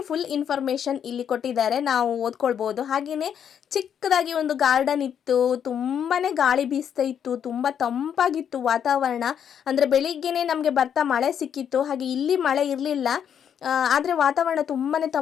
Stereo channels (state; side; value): quieter; right; 8.5 dB